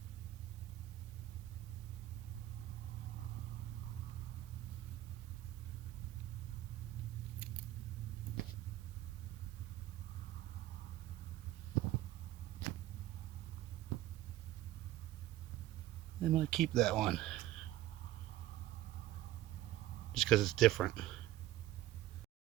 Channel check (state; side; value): quieter; left; 14.9 dB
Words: I might keep that one. Just because it's different.